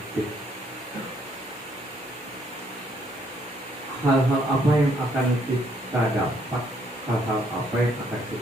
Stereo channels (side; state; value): both; normal; correlation 0.69